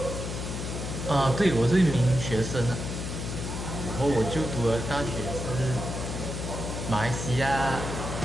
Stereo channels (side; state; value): left; noise; hum, 5 dB below the sound